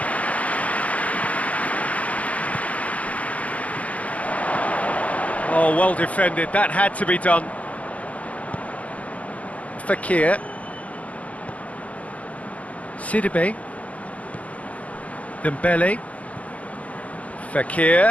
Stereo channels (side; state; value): right; late; 0.066 ms